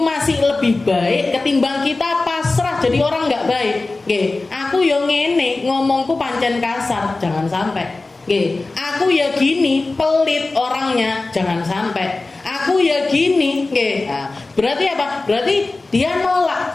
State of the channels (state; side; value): quieter; right; 3.3 dB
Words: lebih baik ketimbang kita pasrah jadi orang nggak baik. Aku yo ngene, ngomongku pancen kasar, jangan sampai. Aku ya gini, pelit orangnya, jangan sampai. Aku ya gini, nah, berarti apa? Berarti dia